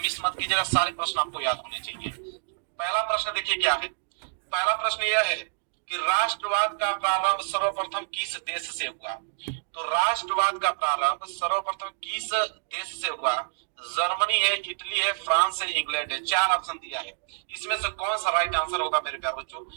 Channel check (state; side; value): silent; left; digital silence